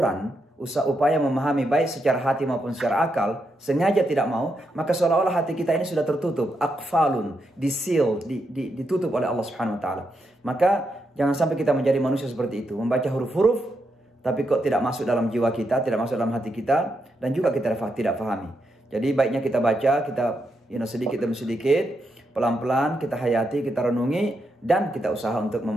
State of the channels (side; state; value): both; normal; correlation 0.82